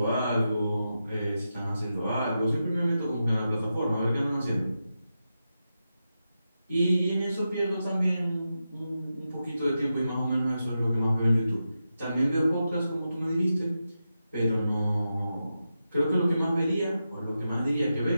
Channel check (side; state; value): both; inverted; correlation -0.89